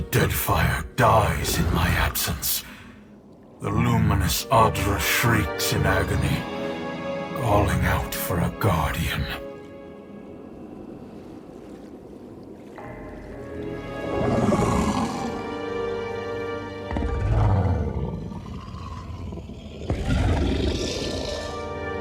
Deadfire dies in my absence. The luminous Adra shrieks in agony, calling out for a guardian.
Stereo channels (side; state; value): both; identical; correlation 1.00